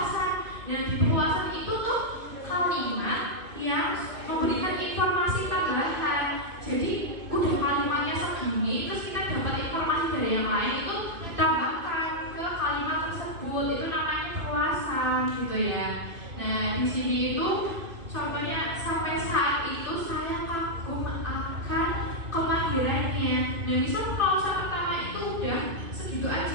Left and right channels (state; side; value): late; left; 2.4 ms